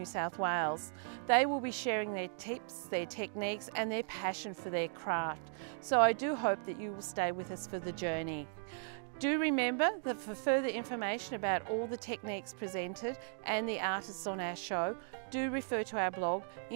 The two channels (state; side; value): silent; left; digital silence